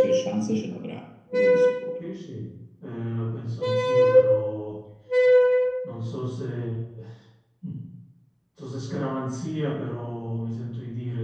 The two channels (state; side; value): identical; both; correlation 1.00